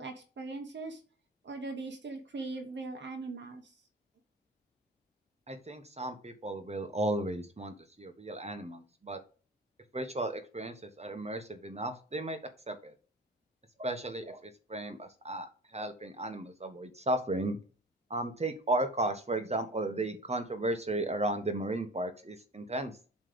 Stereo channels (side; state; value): both; normal; correlation 0.38